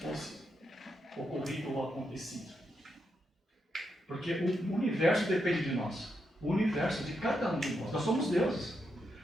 ocorrido ou acontecido. Porque o universo depende de nós. O universo de cada um de nós. Nós somos deuses.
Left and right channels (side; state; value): both; normal; correlation 0.82